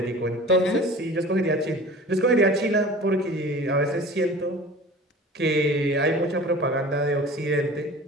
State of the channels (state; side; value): normal; both; correlation 0.40